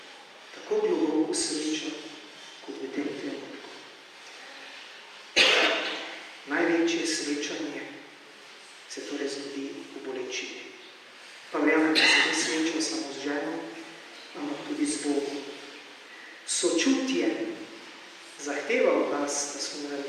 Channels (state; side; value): identical; both; correlation 1.00